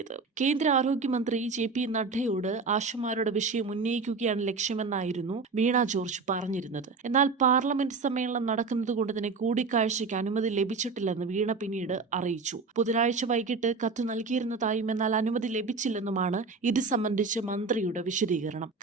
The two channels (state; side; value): quieter; left; 4.4 dB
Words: കേന്ദ്ര ആരോഗ്യമന്ത്രി JP നഡ്ഡയോട് ആശമാരുടെ വിഷയം ഉന്നയിക്കുകയാണ് ലക്ഷ്യമെന്നായിരുന്നു വീണ ജോർജ് പറഞ്ഞിരുന്നത്. എന്നാൽ പാർലമെന്റ് സമ്മേളനം നടക്കുന്നതുകൊണ്ട് തന്നെ കൂടിക്കാഴ്ചയ്ക്ക് അനുമതി ലഭിച്ചിട്ടില്ലെന്ന് വീണ പിന്നീട് അറിയിച്ചു. ബുധനാഴ്ച വൈകിട്ട് കത്ത് നൽകിയിരുന്നതായും എന്നാൽ അനുമതി ലഭിച്ചില്ലെന്നുമാണ് ഇത് സംബന്ധിച്ച് മന്ത്രിയുടെ വിശദീകരണം.